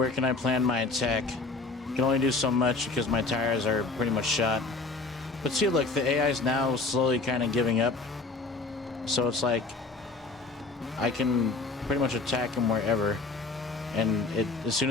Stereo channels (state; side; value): quieter; right; 3.7 dB